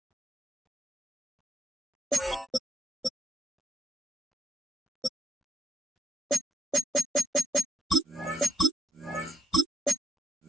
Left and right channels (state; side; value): normal; both; correlation 0.76